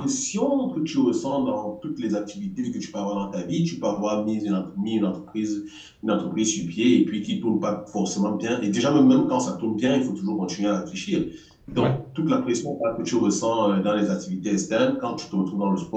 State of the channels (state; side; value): identical; both; correlation 1.00